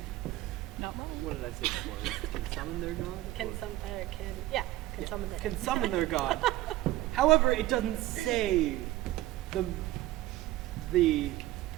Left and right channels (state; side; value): quieter; left; 16.3 dB